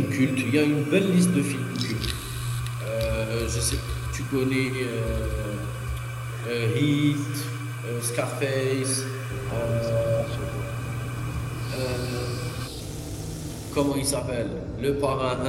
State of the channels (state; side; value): identical; both; correlation 1.00